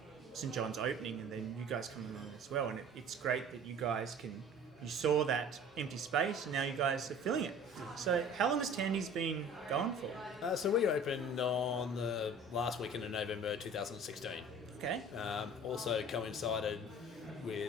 St John's opening and then you guys coming along as well, and it's great that you saw that empty space and now you guys are filling it. So how long has Tandy's been going for? So we opened on the last weekend of November 2016. Okay. Also coincided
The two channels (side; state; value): both; normal; correlation 0.45